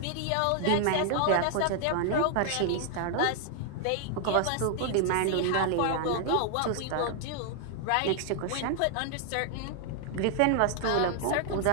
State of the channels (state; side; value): different; both; correlation 0.00